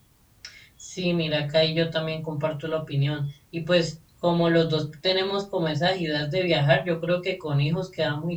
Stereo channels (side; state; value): both; identical; correlation 1.00